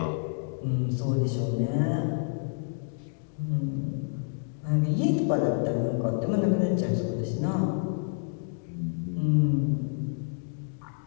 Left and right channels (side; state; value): right; silent; digital silence